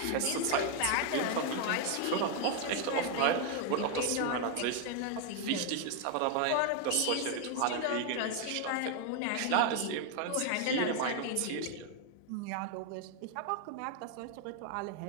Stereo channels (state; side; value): different; both; correlation 0.01